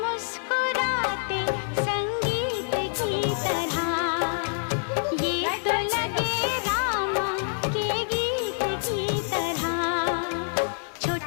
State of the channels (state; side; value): silent; right; digital silence